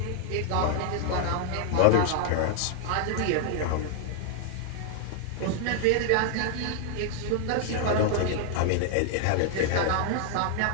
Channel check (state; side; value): different; both; correlation 0.00